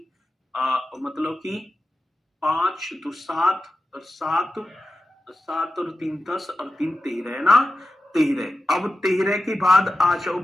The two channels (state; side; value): normal; both; correlation 0.92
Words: मतलब कि 5 तो 7 और 7 और 3 10 और 3 13 है ना, 13। अब 13 के बाद आ जाओ